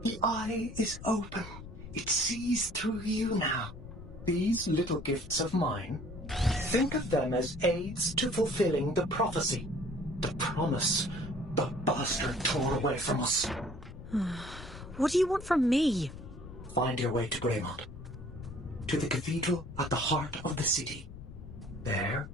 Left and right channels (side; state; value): left; noise; rumble, 13 dB below the sound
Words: The eye is open. It sees through you now. These little gifts of mine, think of them as aids to fulfilling the prophecy, the promise the bastard tore away from us. What do you want from me? Find your way to Greymont, to the cathedral at the heart of the city. There,